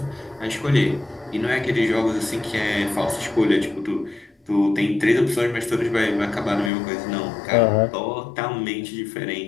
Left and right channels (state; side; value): drops out; right; at 6.7 s